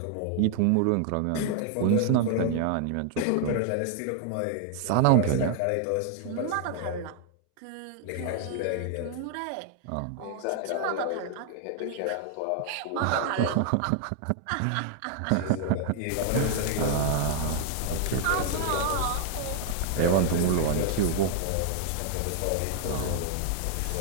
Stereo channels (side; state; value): both; different; correlation 0.00